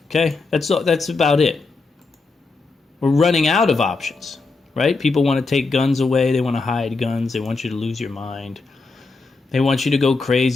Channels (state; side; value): quieter; right; 3.9 dB